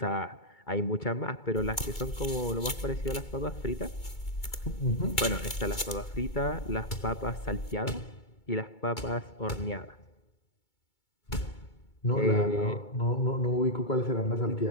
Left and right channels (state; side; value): late; right; 2.2 ms